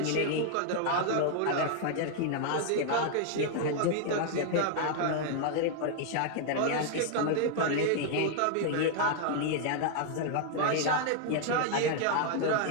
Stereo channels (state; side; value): different; both; correlation 0.00